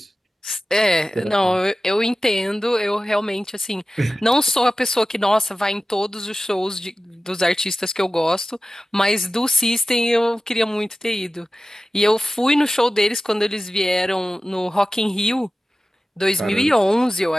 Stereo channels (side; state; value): both; normal; correlation 0.95